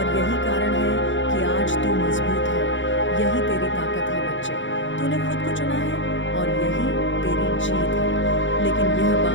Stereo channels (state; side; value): late; right; 0.55 ms